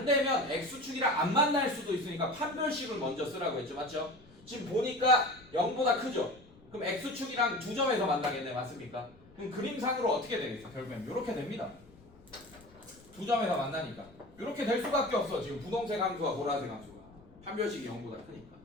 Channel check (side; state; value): left; noise; rumble, 25 dB below the sound